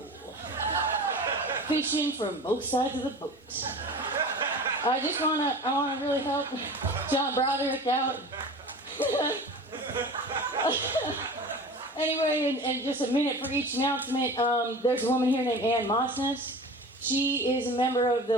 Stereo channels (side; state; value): both; normal; correlation 0.36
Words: Fishing from both sides of the boat. I want to really help John Broderick out. Anyway, and just a minute for each announcement. There's a woman here named Ann Mossness. She is a member of